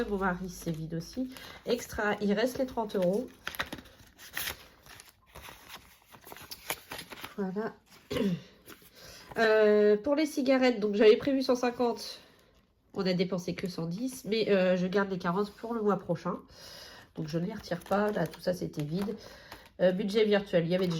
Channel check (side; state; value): both; identical; correlation 1.00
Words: Mon mari, c'est vide aussi. Extra, il reste les 30 €. Voilà. Pour les cigarettes, donc j'avais prévu 150. On a dépensé que 110. Mais je garde les 40 pour le mois prochain. Donc je ne les retire pas. Là, tout ça, c'était vide. Budget virtuel, il n'y avait